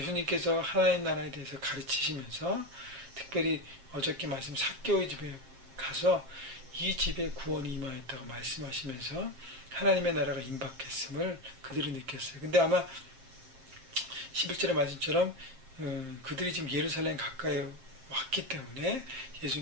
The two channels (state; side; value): late; left; 7.5 ms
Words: 하나님 나라에 대해서 가르치시면서 특별히 어저께 말씀 삭개오의 집에 가서 이 집에 구원이 임하였다고 말씀하시면서 하나님의 나라가 임박했음을 그들이 느꼈어요. 근데 아마 11절의 말씀처럼 그들이 지금 예루살렘 가까이 왔기 때문에